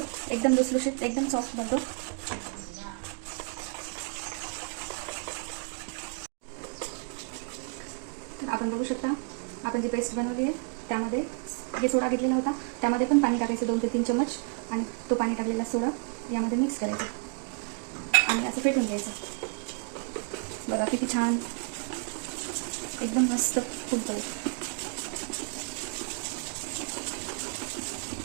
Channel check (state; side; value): quieter; left; 37.1 dB